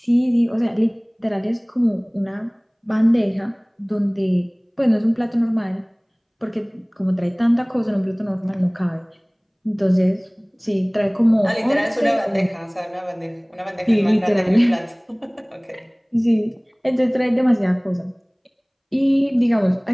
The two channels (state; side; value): identical; both; correlation 1.00